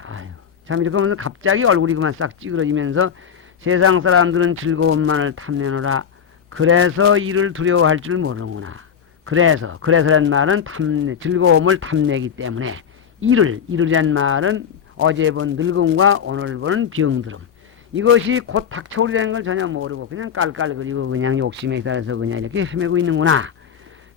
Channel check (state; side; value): quieter; right; 7.8 dB